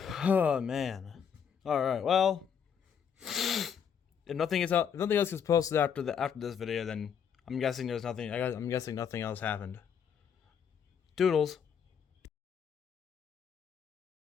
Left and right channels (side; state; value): right; quieter; 7.6 dB